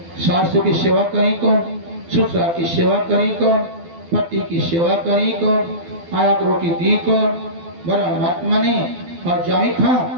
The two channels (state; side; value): late; left; 12 ms